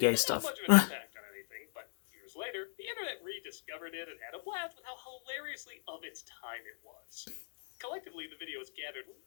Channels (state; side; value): silent; right; digital silence